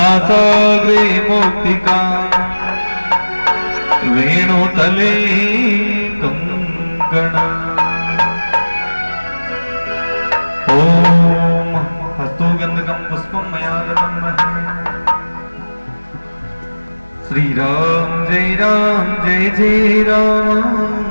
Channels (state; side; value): inverted; both; correlation -1.00